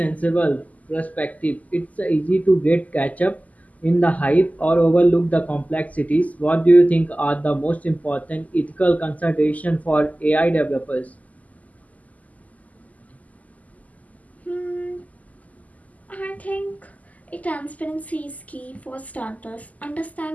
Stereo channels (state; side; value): late; right; 0.075 ms